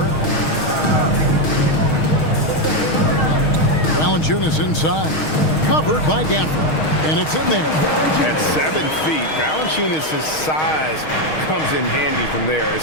Valanciunas inside. Covered by Gafford. And it's in there. At 7 feet, Valanciunas' size comes in handy from there,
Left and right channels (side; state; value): right; late; 6.4 ms